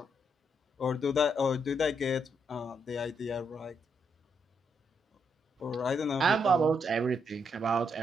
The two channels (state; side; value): normal; both; correlation 0.77